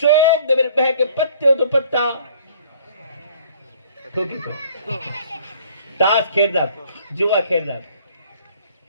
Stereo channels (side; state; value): both; inverted; correlation -0.56